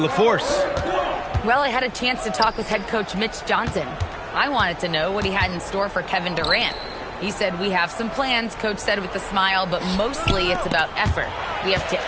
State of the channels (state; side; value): identical; both; correlation 1.00